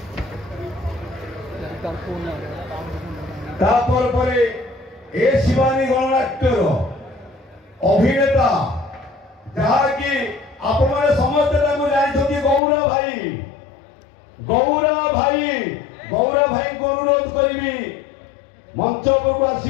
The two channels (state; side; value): drops out; right; at 12.6 s